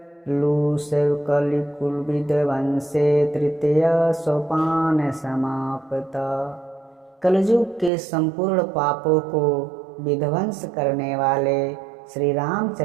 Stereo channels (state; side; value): drops out; left; at 7.9 s